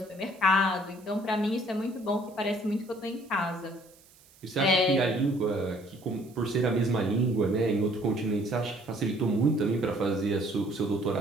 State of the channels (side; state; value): right; noise; hiss, 27 dB below the sound